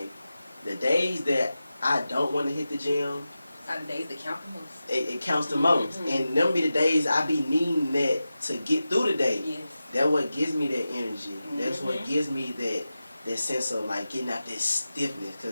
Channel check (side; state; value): both; inverted; correlation -0.93